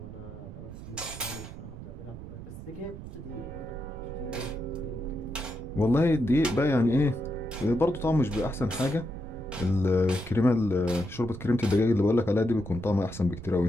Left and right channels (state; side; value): noise; right; rumble, 12 dB below the sound